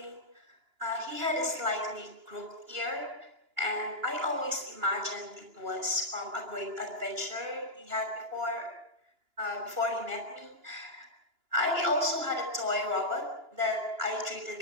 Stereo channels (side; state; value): left; late; 2.9 ms